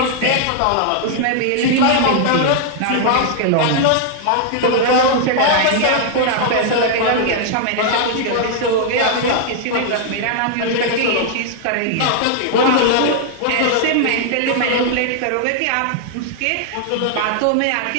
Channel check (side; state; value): both; different; correlation -0.01